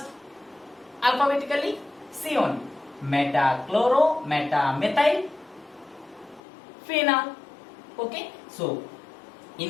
Alphabetically, C only. Metachloro, metamethyl phenol. Okay. So,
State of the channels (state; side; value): drops out; right; at 6.4 s